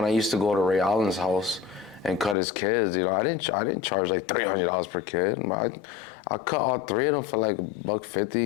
I used to go to Ray Allen's house and cut his kids, you know, I didn't charge like $300 per kid. I cut all three of them for like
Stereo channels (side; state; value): right; drops out; at 2.4 s